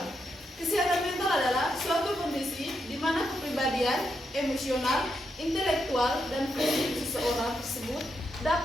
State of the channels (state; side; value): normal; both; correlation 0.83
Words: Kesehatan mental adalah suatu kondisi di mana kepribadian, emosional, intelektual, dan fisik seseorang tersebut